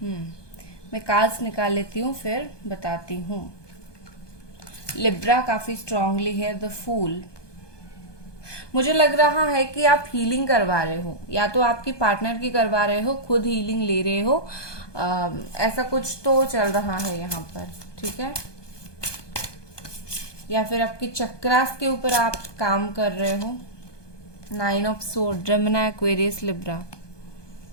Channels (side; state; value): right; late; 1.2 ms